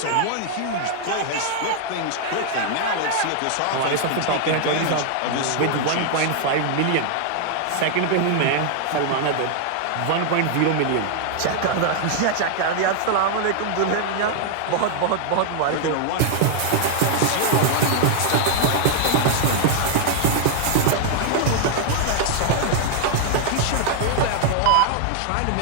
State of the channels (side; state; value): both; different; correlation 0.00